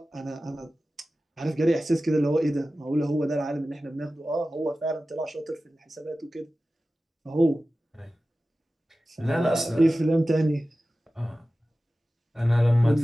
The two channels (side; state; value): both; normal; correlation 0.95